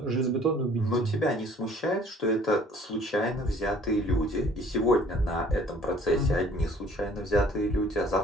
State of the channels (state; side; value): normal; both; correlation 0.54